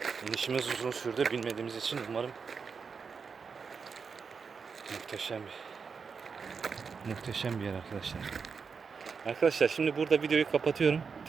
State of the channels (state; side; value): quieter; left; 5.6 dB